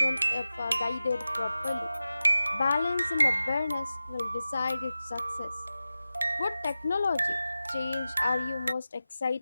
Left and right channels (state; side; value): inverted; both; correlation -0.94